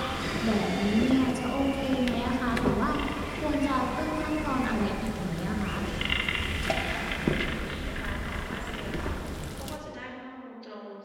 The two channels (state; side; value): identical; both; correlation 1.00